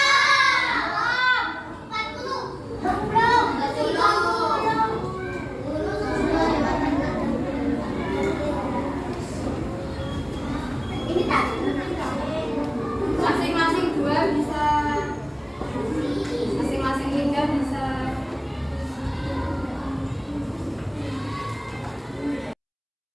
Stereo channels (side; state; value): both; identical; correlation 1.00